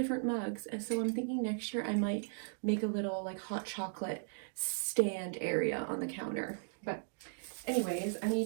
mugs. And so I'm thinking next year I might make a little like hot chocolate stand area on the counter. But anyways, I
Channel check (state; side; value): silent; left; digital silence